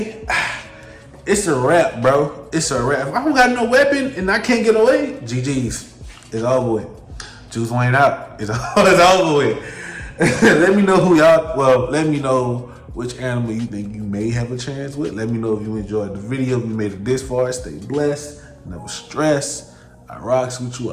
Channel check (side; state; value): both; identical; correlation 1.00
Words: It's a wrap, bro. It's a wrap. If I don't got no weapon and I can't get away, GG's. It's over with. Juice Wayne out. It's over with. Let me know let me know which animal you think you may have a chance with. Let me know if you enjoyed the video. If you made it this far, stay blessed. Never stress. I rocks with you.